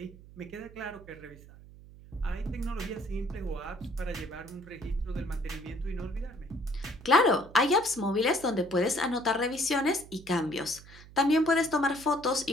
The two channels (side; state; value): right; noise; hum, 19 dB below the sound